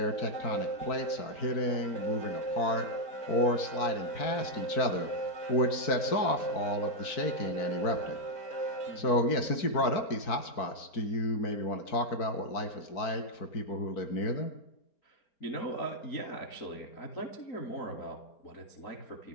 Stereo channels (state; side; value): late; right; 4.6 ms